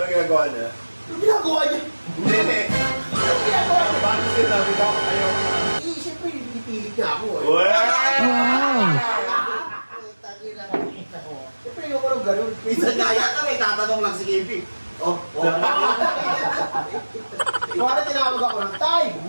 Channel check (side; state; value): both; inverted; correlation -1.00